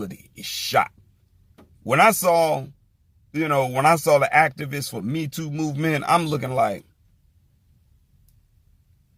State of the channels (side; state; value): both; identical; correlation 1.00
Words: is shot. When I saw the activists for Me Too movement, I'm looking like,